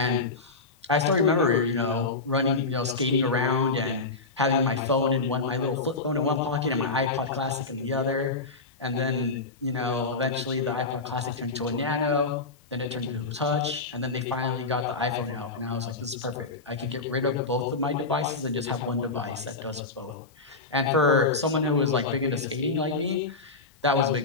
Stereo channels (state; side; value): quieter; right; 3.9 dB